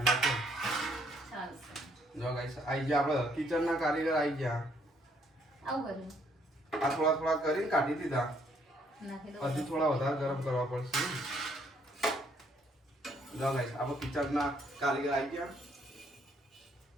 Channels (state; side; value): normal; both; correlation 0.68